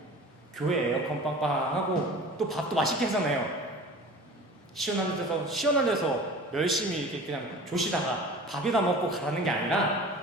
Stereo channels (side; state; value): both; normal; correlation 0.40